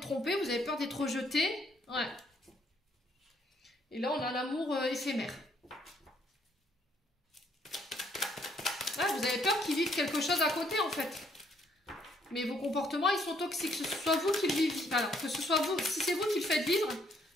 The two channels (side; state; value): both; normal; correlation 0.68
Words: trompé, vous avez peur d'être rejeté. Ouais. Et là, on a l'amour éphémère. qui vivent quelque chose à côté en fait. Mais vos comportements, ils sont toxiques. Que ce soit vous qui le vivez. Alors, que ce soit vous, si c'est vous qui le faites vivre,